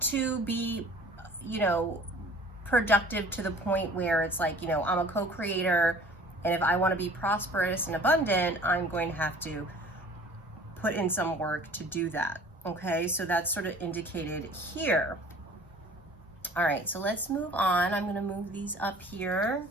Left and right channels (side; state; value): both; normal; correlation 0.48